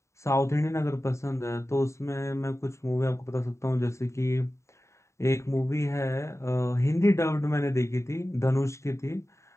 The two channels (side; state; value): right; late; 0.14 ms